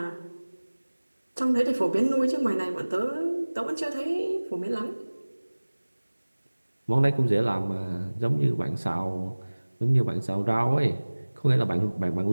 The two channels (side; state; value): both; inverted; correlation -1.00